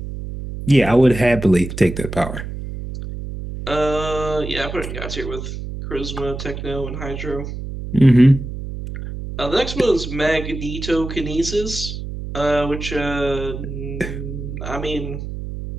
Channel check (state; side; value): noise; right; hum, 8 dB below the sound